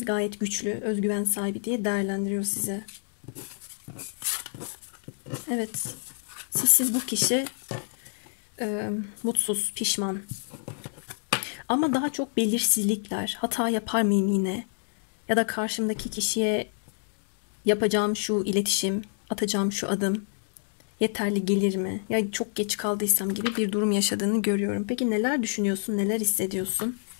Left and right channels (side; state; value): right; silent; digital silence